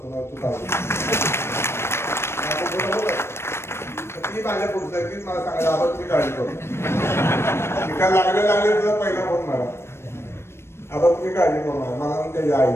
तू काळजी ती माझ्या पुढचं आहे, तीच मला सांगायला आपण तुम्ही काळजी करू काय लागले तुझा पहिला फोन मला, आता तुम्ही काळजी करू मला म्हणून त्याच्या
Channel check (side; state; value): right; late; 0.12 ms